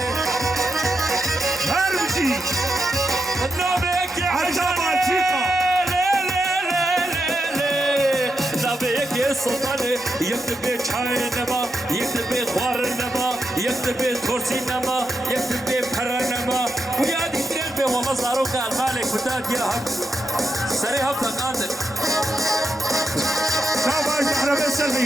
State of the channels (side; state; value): both; normal; correlation 0.85